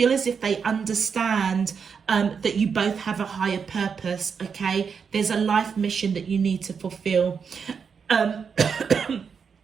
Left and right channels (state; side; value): quieter; left; 6.2 dB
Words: as if they understand that you both have a higher purpose. Okay, there's a life mission that you need to fulfill.